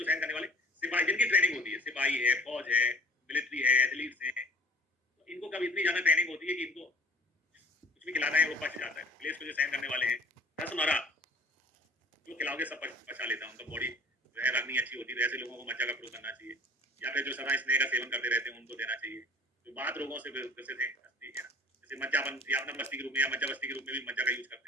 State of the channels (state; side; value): normal; both; correlation 0.48